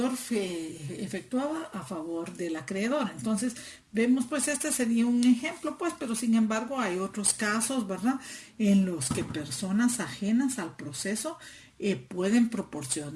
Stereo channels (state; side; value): identical; both; correlation 1.00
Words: efectuaba a favor del acreedor. Entonces, vemos, pues, este sería un ejemplo, pues, pero sin embargo hay otros casos, ¿verdad?, en los que personas ajenas al proceso pueden